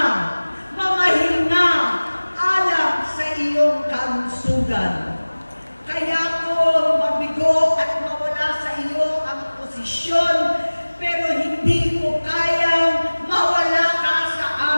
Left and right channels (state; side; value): inverted; both; correlation -1.00